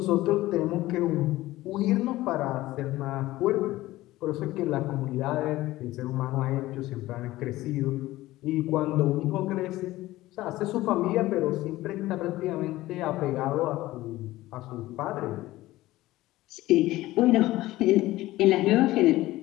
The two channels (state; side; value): quieter; right; 17.0 dB